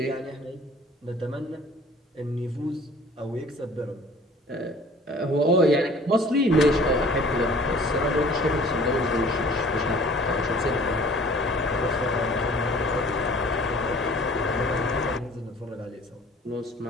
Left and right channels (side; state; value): both; normal; correlation 0.50